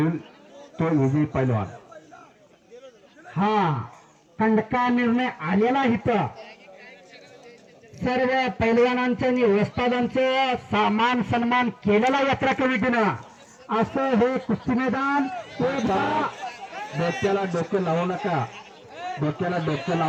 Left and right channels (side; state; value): both; identical; correlation 1.00